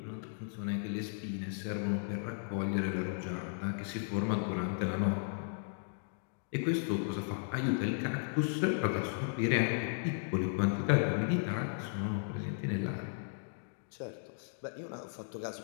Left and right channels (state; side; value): silent; right; digital silence